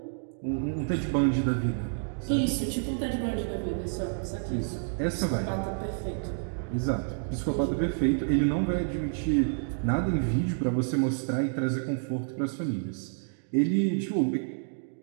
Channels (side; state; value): left; silent; digital silence